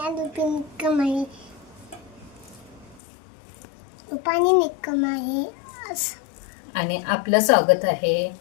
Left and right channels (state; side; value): drops out; right; at 3.0 s